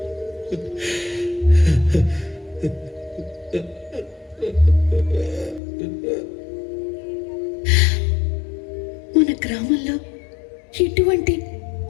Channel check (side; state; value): right; drops out; at 5.6 s